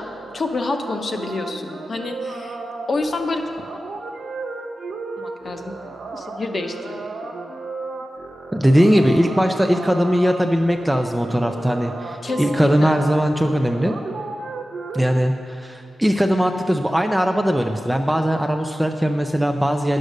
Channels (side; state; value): both; normal; correlation 0.95